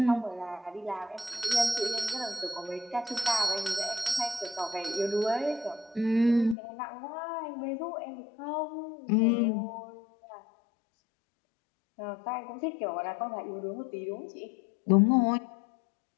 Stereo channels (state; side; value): drops out; right; at 6.6 s